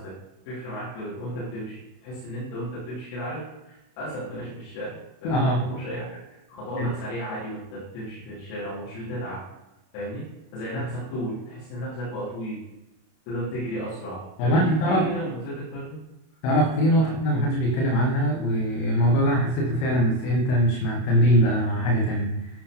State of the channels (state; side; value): late; right; 32 ms